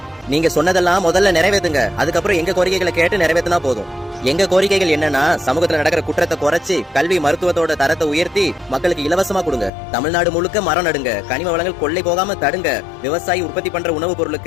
நீங்க சொன்னதெல்லாம் முதல்ல நிறைவேற்றுங்க, அதுக்கப்புறம் எங்க கோரிக்கைகளை கேட்டு நிறைவேற்றினா போதும். எங்க கோரிக்கைகள் என்னன்னா, சமூகத்துல நடக்கிற குற்றத்தை குறைச்சி கல்வி மருத்துவத்தோட தரத்தை உயர்த்தி மக்களுக்கு இலவசமா கொடுங்க. தமிழ்நாடு முழுக்க மரம் நடுங்க, கனிம வளங்கள் கொள்ளை போகாம தடுங்க, விவசாயி உற்பத்தி பண்ற உணவுப்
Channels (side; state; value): right; drops out; at 9.7 s